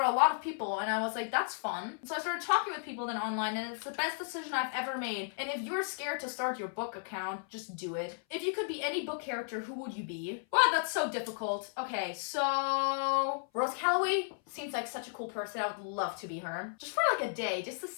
a lot of people and I was like, that's fun. So I started talking with people then online and it's the best decision I've ever made. And if you're scared to start your book account, just do it. If you could be any book character, who would you be? Wow, that's so difficult. Okay, so Rose Calloway seems like such a cool person. I would love to be her. Just for like a day, just to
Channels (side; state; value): right; silent; 55 dB below the other